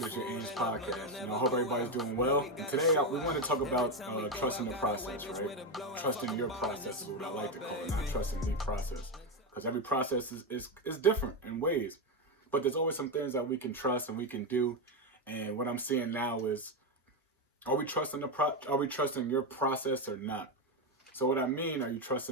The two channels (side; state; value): both; normal; correlation 0.09